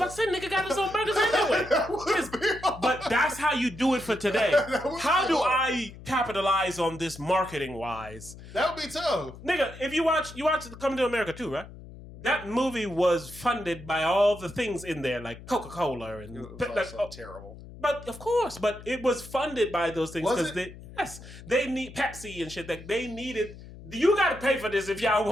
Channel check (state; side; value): noise; left; hum, 16 dB below the sound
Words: to say, nigga got his own burgers anyway. But that's how you do it for today. How do I capitalize on this marketing wise? That would be tough. Nigga, if you watch Coming to America too, right? That movie was funded by all the things in there, like Coca-Cola and terrible. But of course, but it was funded by those things because they need Pepsi and shit. Like they needed. You got to pay for this if y'all